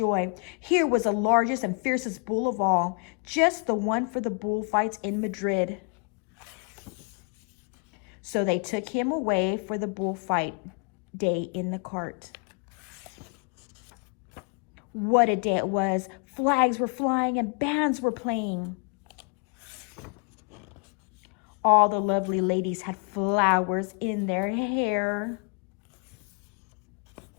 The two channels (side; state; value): right; quieter; 36.9 dB